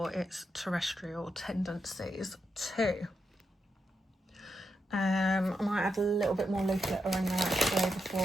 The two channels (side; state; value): both; normal; correlation 0.84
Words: its terrestrial tendencies too. I might add a little bit more leaf litter in there actually